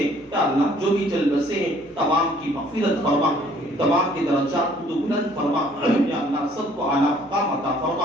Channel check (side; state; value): right; noise; hum, 28 dB below the sound